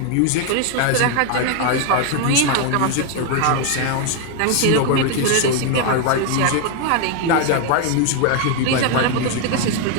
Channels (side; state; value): both; different; correlation 0.01